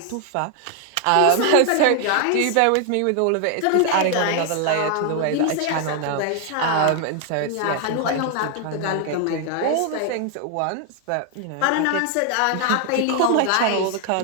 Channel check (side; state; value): both; different; correlation 0.00